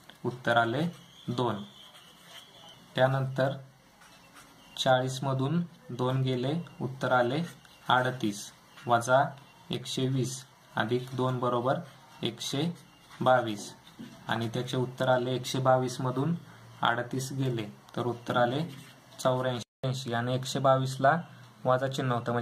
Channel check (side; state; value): both; identical; correlation 1.00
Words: उत्तर आले 2. त्यानंतर 40 मधून 2 गेले, उत्तर आले 38 वजा 120 अधिक 2 बरोबर 122 आणि त्याचे उत्तर आले 122 मधून 38 गेले तर उत्तर आले 84 आणि 122 ला वजा चिन्ह होतं